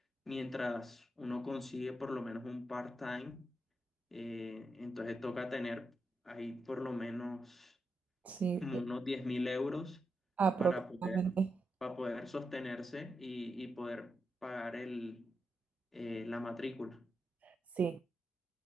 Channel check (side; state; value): both; normal; correlation 0.86